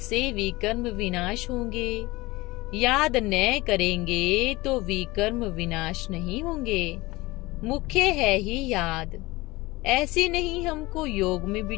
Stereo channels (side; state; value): right; quieter; 21.1 dB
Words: विकर्म विनाश होंगे, याद न करेंगे तो विकर्म विनाश नहीं होंगे। मुख्य है ही याद। ऐसे नहीं हमको योग में